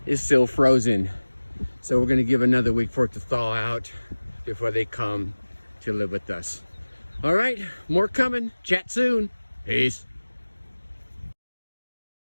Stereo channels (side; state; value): both; inverted; correlation -1.00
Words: is still frozen. So we're going to give another week for it to thaw out before they come to live with us. All right, more coming. Chat soon. Peace.